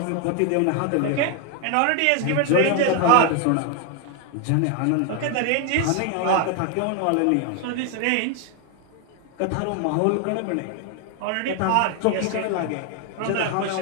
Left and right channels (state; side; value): different; both; correlation 0.00